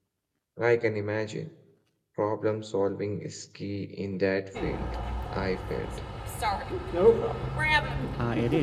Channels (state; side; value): identical; both; correlation 1.00